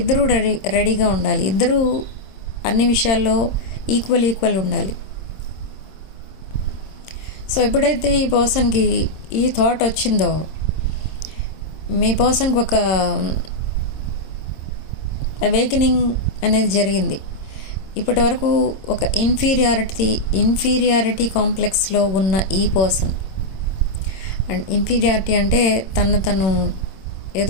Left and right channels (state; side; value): late; right; 26 ms